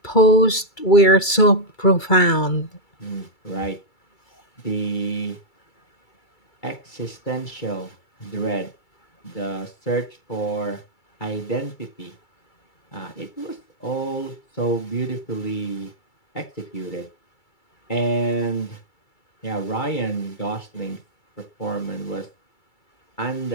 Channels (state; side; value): late; right; 2.3 ms